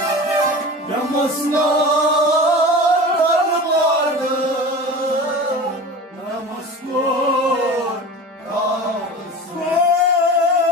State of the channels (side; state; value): both; normal; correlation 0.34